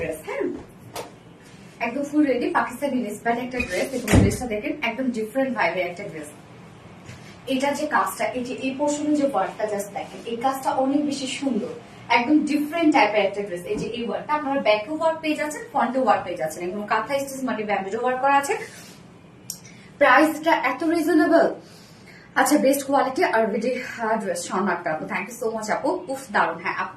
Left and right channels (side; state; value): both; identical; correlation 1.00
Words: হ্যাঁ, একদম ফুল রেডি পাকিস্তানি ইন্সপায়ার্ড একটা ড্রেস। এবং ড্রেসটা দেখেন একদম ডিফারেন্ট ভাইবের একটা ড্রেস। এটা যে কাজটা, এই যে এই পোর্শনে যে ওয়ার্কটা জাস্ট দেখেন, এই কাজটা অনেক বেশি সুন্দর, একদম ডিফারেন্ট টাইপের একটা ড্রেস। এই যে এই ওয়ার্কটা আপনারা ব্যাকে ওয়ার্ক পেয়ে যাচ্ছেন, ফ্রন্টে ওয়ার্ক পেয়ে যাচ্ছেন, একদম কাঁথা স্টিচ মানে ব্যাম্বো ওয়ার্ক করা আছে। প্রাইসটা এত রিজনেবল। আচ্ছা, বেস্ট কোয়ালিটি আর ভিডি ড্রেস শর্মাটা আপু, থ্যাংক ইউ সো মাচ আপু। খুব দারুণ। হ্যাঁ আপু,